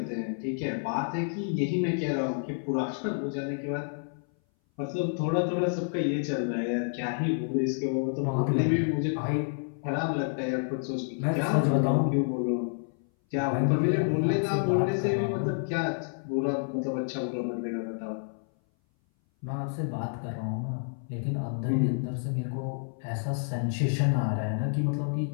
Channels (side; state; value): right; silent; 58 dB below the other